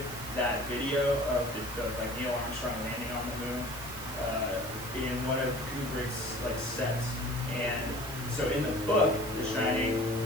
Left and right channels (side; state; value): right; noise; hiss, 11 dB below the sound